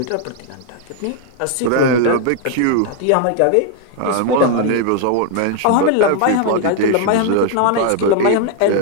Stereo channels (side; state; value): both; different; correlation 0.00